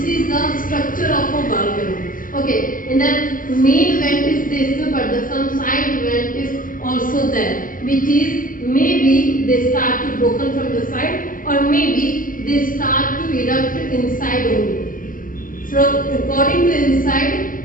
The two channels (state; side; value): late; right; 0.40 ms